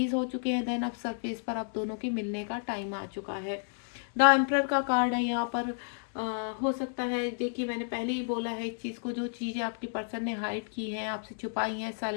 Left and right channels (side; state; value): right; silent; digital silence